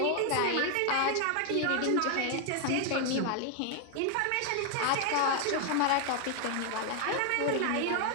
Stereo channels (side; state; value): both; different; correlation 0.00